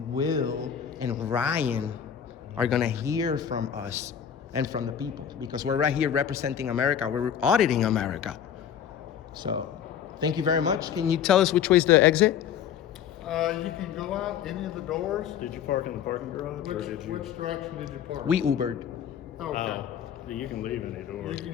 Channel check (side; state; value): right; quieter; 8.8 dB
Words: Will and Ryan are gonna hear from us and from the people, because we're right here representing America. We're auditing America. So thank you very much. Can you tell us which way's the exit? You can go out any of the doors. Did you park in the parking garage or did you? Which direction did you park? We Ubered. Okay. You can leave any door. You can